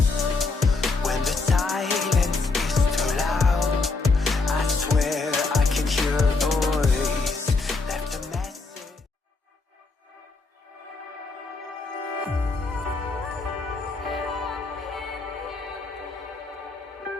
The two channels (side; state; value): right; quieter; 3.9 dB